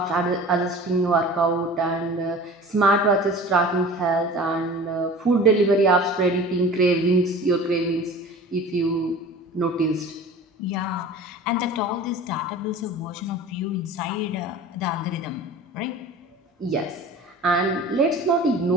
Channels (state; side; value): normal; both; correlation 0.40